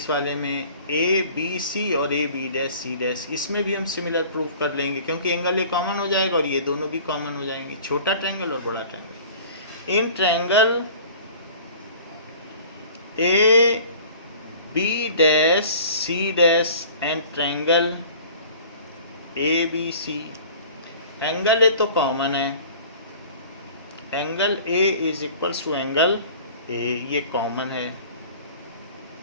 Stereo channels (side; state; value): both; inverted; correlation -0.46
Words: वाले में ए बी सी और A B dash C dash, इसमें भी हम सिमिलर प्रूव कर लेंगे क्योंकि एंगल ए कॉमन हो जाएगा और ये दोनों भी कॉमन हो जाएंगे, छोटा ट्रायंगल और बड़ा triangle. In triangle A B dash C dash and triangle A B C, angle A तो कॉमन है, angle A is equals to angle A, ये कॉमन है,